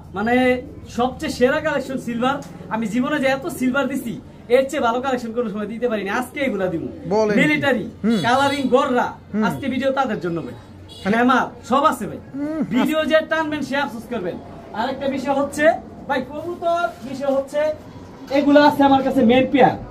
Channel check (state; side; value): identical; both; correlation 1.00